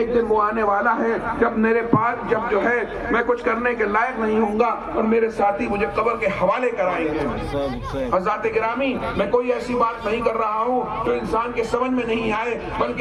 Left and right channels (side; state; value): both; identical; correlation 1.00